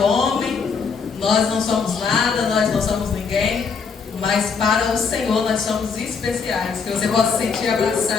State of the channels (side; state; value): right; quieter; 5.5 dB